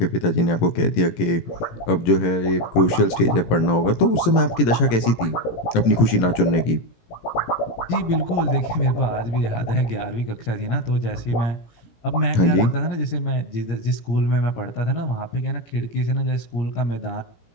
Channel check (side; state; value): right; late; 17 ms